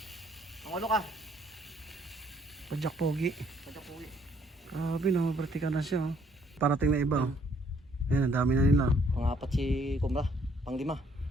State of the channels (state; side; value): normal; both; correlation 0.65